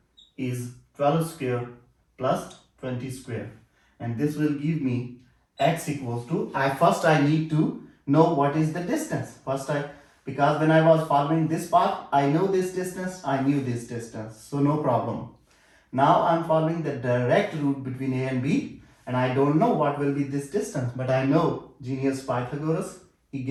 is 12 square plus 20 square. And this will give me x equals to, first I need to know what is the distance. Because when I was following this path, I know this distance, I knew this distance. So no problem. Now I'm following the direct route between A and B and I don't know what will be this distance, but I know genius Pythagoras, he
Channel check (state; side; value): identical; both; correlation 1.00